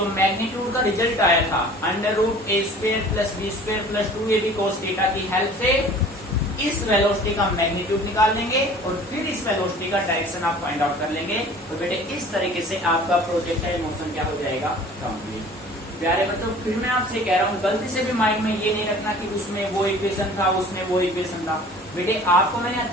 मैग्नीट्यूड का रिजल्ट आया था, √a² + b² + 2ab cos theta की हेल्प से इस वेलोसिटी का मैग्नीट्यूड निकाल लेंगे और फिर इस वेलोसिटी का डायरेक्शन आप फाइंड आउट कर लेंगे। तो बेटे इस तरीके से आपका प्रोजेक्टाइल मोशन क्या हो जाएगा? कंप्लीट। प्यारे बच्चों, फिर मैं आपसे कह रहा हूँ, गलती से भी माइंड में ये नहीं रखना कि उसमें वो इक्वेशन था, उसमें वो इक्वेशन था। बेटे आपको मैंने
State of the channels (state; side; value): normal; both; correlation 0.46